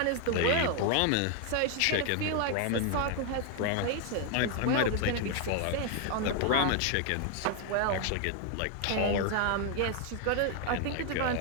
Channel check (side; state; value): both; different; correlation 0.00